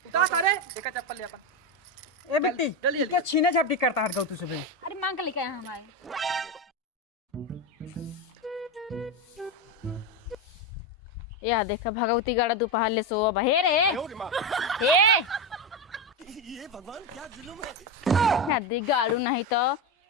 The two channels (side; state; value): both; normal; correlation 0.13